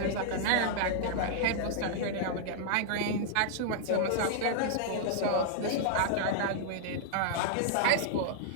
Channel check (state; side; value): different; both; correlation -0.01